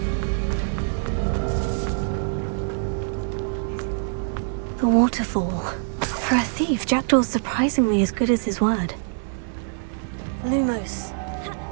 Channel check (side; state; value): left; silent; digital silence